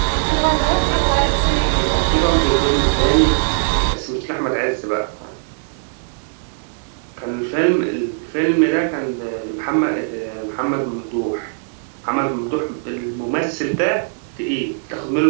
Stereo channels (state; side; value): silent; left; digital silence